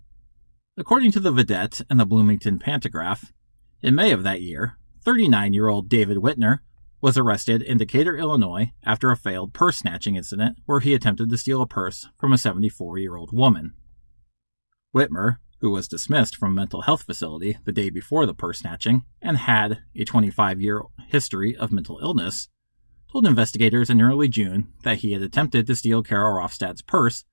According to the Vidette and the Bloomington Pantagraph, in May of that year, 39-year-old David Whitner was arrested in Decatur, Illinois after a failed purse snatching incident where he attempted to steal a purse from a 74-year-old woman. Whitmer, who was dismissed from a mental health facility the day before the purse snatching and had a 25-year history of mental illness, told investigators in early June that he had attempted to steal Carol Rofstad's purse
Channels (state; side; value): inverted; both; correlation -1.00